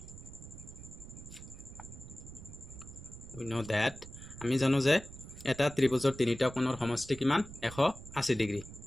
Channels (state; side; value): noise; right; rumble, 14 dB below the sound